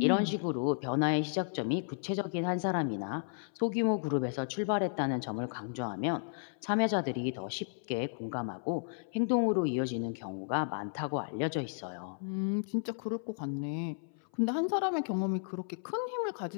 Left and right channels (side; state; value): right; silent; 55 dB below the other